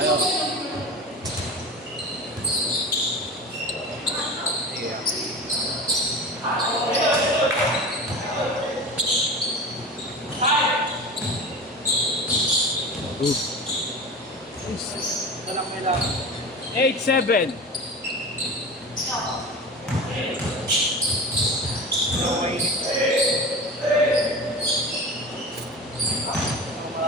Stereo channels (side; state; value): both; normal; correlation 0.31